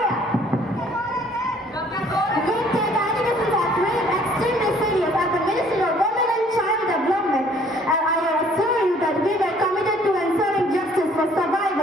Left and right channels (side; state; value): both; normal; correlation 0.59